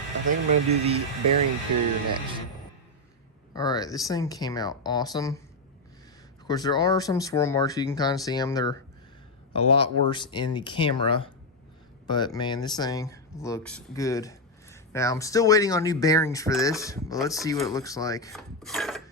I think I'm going to do the bearing carrier next. Alright, this thing came out awesome. Of course, there are some swirl marks. You can kind of see them. They're a lot worse in the camera. But, man, this thing looks good. Now, I'm still waiting on new bearings for this. But let's see what it looks like.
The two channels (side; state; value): both; normal; correlation 0.03